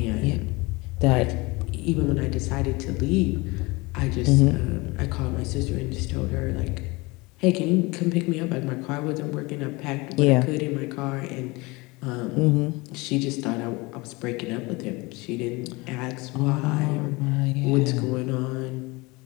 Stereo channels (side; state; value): right; quieter; 24.4 dB